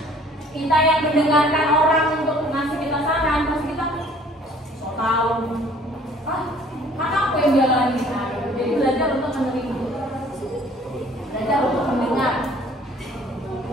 kita yang mendengarkan orang untuk ngasih kita saran, pasti kita so tau. Kan aku yang jalanin. Jadi belajar untuk menerima, belajar untuk mendengar.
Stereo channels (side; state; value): both; normal; correlation 0.55